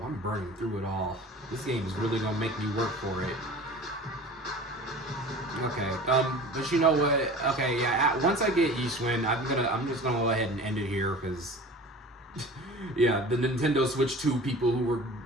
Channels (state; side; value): normal; both; correlation 0.40